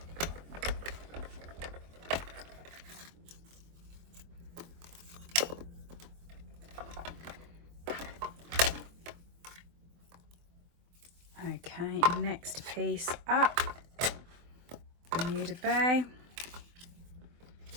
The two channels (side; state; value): left; late; 24 ms